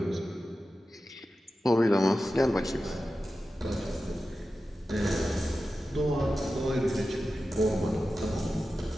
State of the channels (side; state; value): both; normal; correlation 0.93